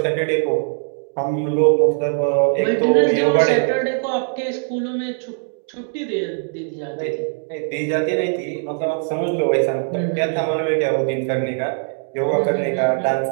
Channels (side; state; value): left; silent; digital silence